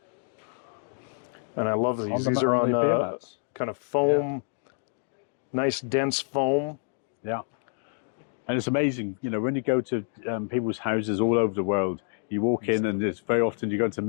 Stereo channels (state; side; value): silent; right; 55 dB below the other